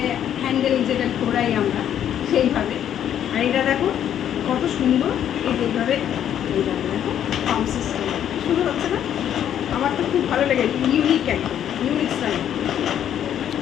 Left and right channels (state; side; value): quieter; right; 10.1 dB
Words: হ্যান্ডেল যেটা ঘোরাই আমরা সেইভাবে, আর এটা দেখো কত সুন্দর এইভাবে এইভাবে দেখো পাম্প সিস্টেম শুরু হচ্ছে না। আমার তো খুব ভালো লেগেছে, ইউনিক একদম ইউনিক স্টাইল,